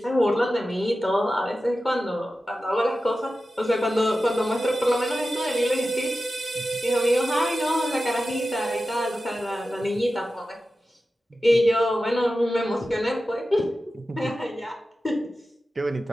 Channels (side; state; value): both; normal; correlation 0.93